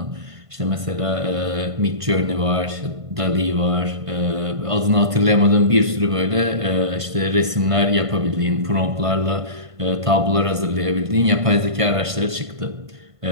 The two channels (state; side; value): late; left; 1.5 ms